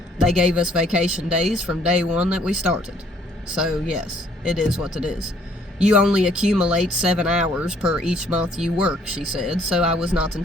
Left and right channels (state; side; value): normal; both; correlation 0.63